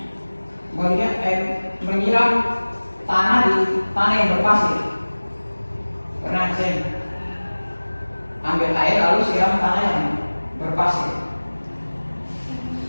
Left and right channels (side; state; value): both; inverted; correlation -1.00